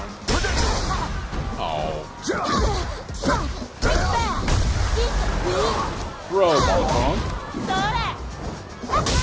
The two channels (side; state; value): both; identical; correlation 1.00